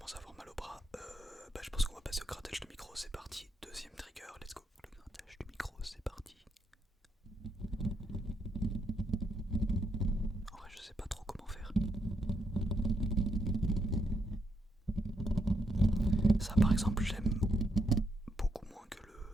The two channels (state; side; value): normal; both; correlation 0.77